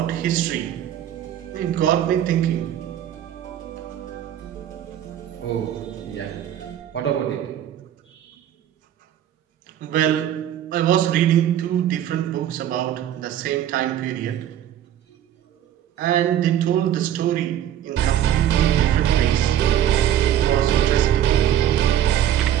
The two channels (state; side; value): quieter; left; 11.0 dB